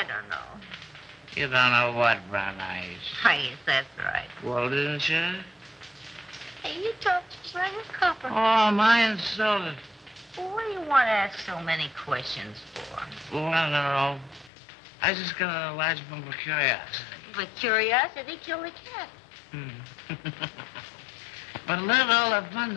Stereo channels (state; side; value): drops out; right; at 14.5 s